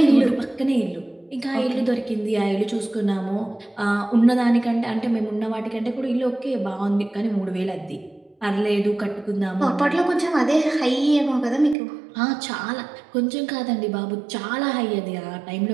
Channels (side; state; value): left; drops out; at 11.8 s